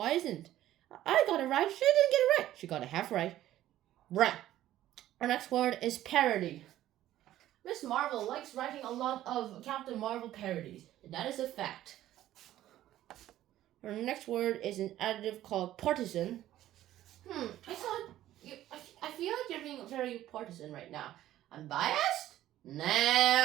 isn't? I got it right. She didn't get it right. She got a half right. Right. Our next word is parody. Miss Marvel likes writing a lot of Captain Marvel parodies. And that is a fact. Our next word is an adjective called partisan. I feel like you're being very partisan right now. I'm biased?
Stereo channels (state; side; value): quieter; left; 13.5 dB